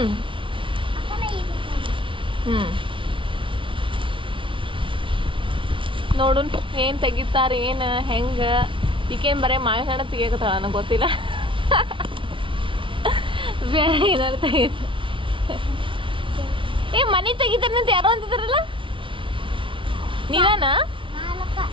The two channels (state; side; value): late; left; 0.25 ms